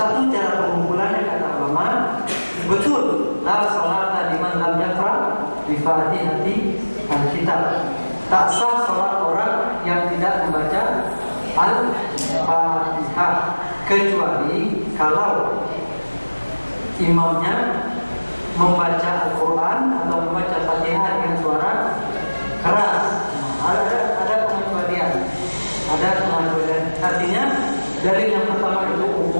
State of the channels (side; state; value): both; inverted; correlation -1.00